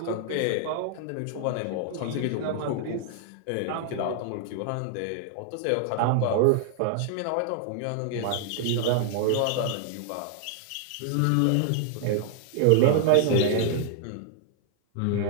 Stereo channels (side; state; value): both; different; correlation 0.00